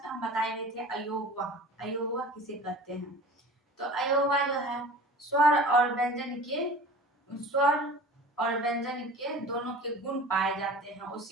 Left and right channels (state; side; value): normal; both; correlation 0.40